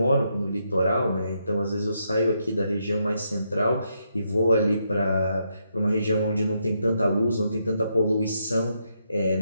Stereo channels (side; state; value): both; inverted; correlation -0.79